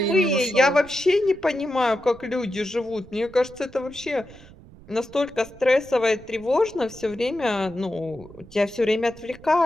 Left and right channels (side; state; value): right; noise; rumble, 21 dB below the sound